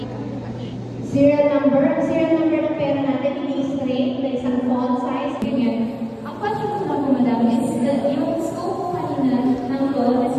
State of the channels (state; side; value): identical; both; correlation 1.00